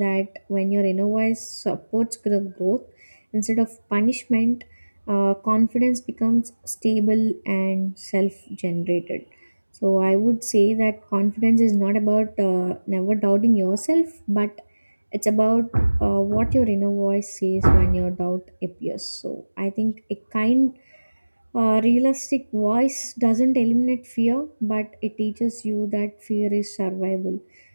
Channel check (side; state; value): both; inverted; correlation -1.00